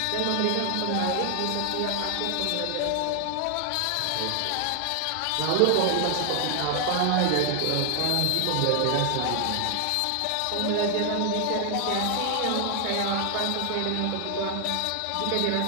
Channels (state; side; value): different; both; correlation 0.00